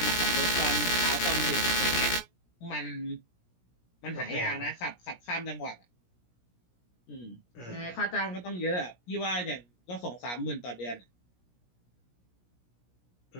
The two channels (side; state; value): right; late; 17 ms